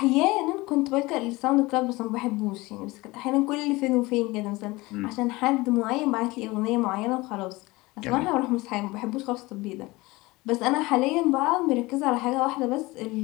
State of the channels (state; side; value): quieter; right; 21.6 dB